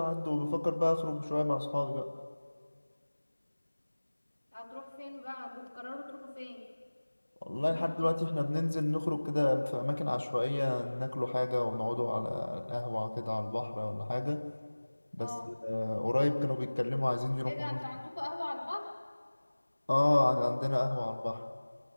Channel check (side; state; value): both; inverted; correlation -1.00